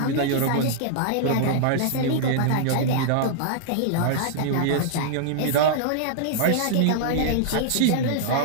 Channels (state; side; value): different; both; correlation -0.01